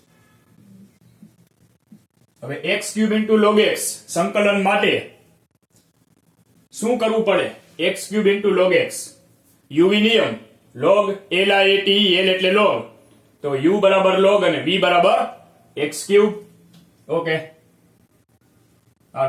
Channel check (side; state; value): both; identical; correlation 1.00